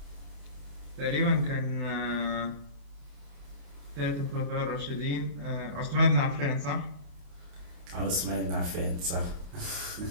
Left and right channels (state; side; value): late; left; 28 ms